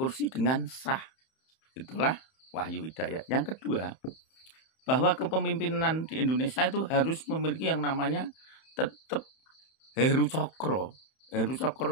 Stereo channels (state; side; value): late; right; 31 ms